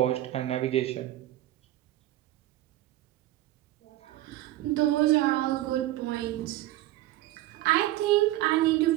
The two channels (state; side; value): quieter; left; 15.5 dB